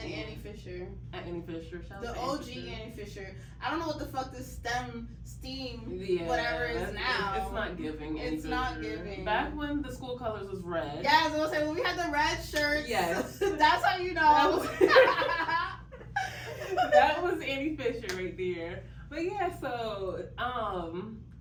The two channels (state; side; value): identical; both; correlation 1.00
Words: Annie Fisher. At Annie Fisher. Shout out the to OG Fisher. Annie Fisher. I don't know what the fuck this STEM, whatever is now. It's not giving. It's not giving. Back when the school colors was red. Yeah, I was gonna say when we had the red shirts. Yes. That's how you know. That was Annie Fisher right there. But yeah, so